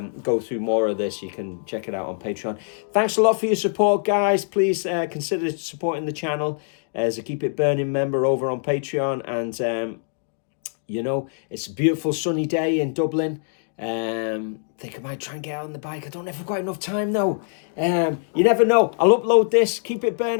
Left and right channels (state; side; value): silent; right; digital silence